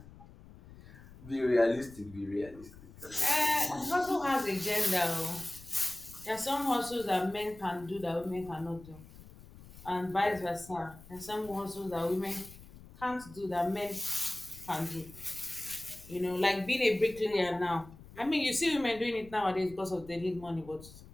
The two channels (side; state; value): left; noise; rumble, 19 dB below the sound